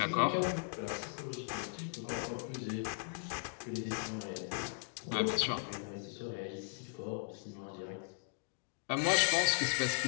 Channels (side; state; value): right; silent; digital silence